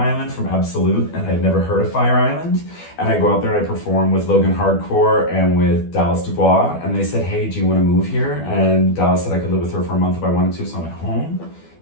from Absolute, and I'd never heard of Fire Island. And I go out there and I perform with Logan Hardcore and with Dallas Dubois. And they said, hey, do you want to move here? And Dallas said I could live with her for a month if I wanted to. So I went home,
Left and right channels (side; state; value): right; late; 12 ms